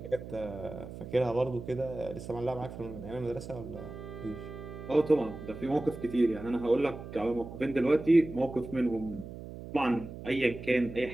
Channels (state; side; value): noise; right; hum, 11 dB below the sound